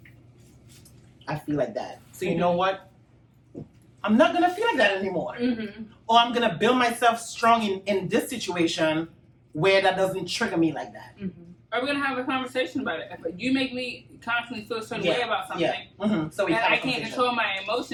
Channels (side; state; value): both; identical; correlation 1.00